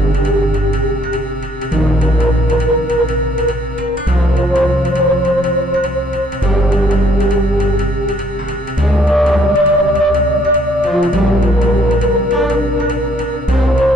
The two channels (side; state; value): both; normal; correlation 0.65